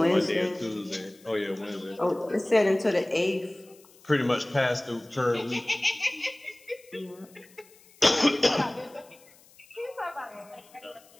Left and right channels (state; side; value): noise; left; hiss, 27 dB below the sound